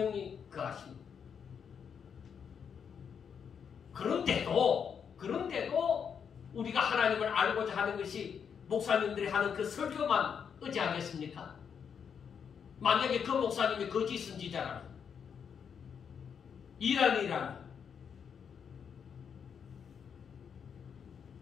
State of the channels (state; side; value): quieter; right; 7.2 dB